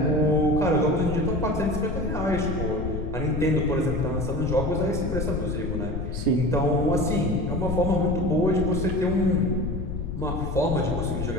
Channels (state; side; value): noise; left; rumble, 5 dB below the sound